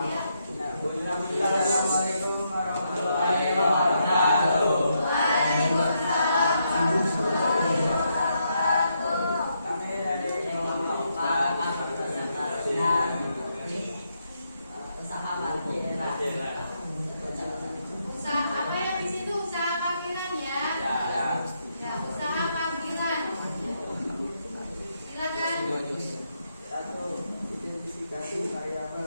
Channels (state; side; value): inverted; both; correlation -0.79